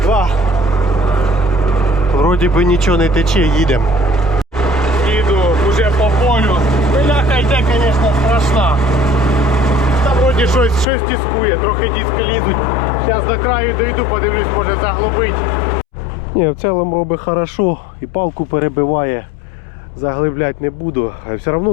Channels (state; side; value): drops out; right; at 10.9 s